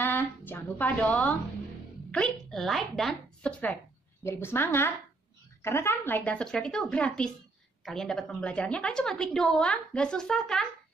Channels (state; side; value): quieter; left; 3.4 dB